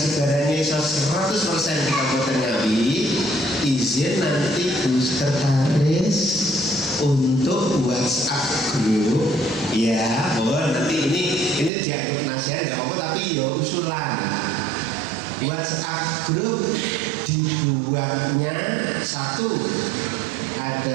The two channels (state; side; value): drops out; left; at 11.7 s